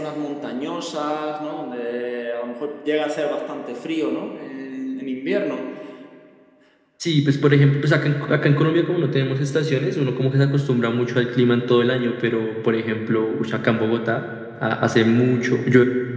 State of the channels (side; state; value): both; identical; correlation 1.00